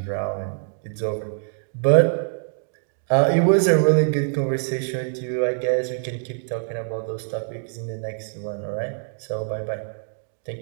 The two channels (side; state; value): left; silent; digital silence